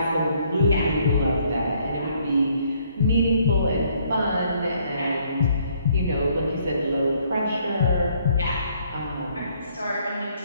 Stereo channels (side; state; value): both; inverted; correlation -0.66